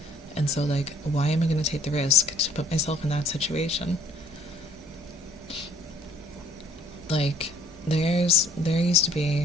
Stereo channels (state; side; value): normal; both; correlation 0.58